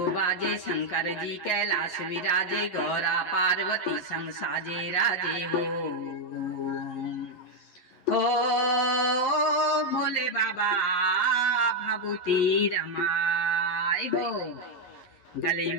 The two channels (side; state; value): right; late; 11 ms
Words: बाजे, शंकर जी कैलाश विराजे, गौरा पार्वती संग साजे राजे हो भोले बाबा भभूति रमाए हो। गले